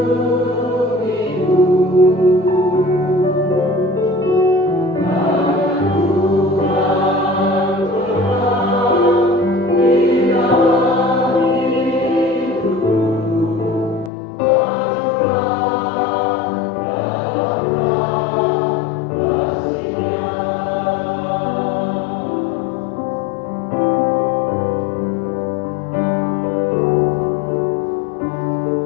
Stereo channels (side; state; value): right; drops out; at 14.1 s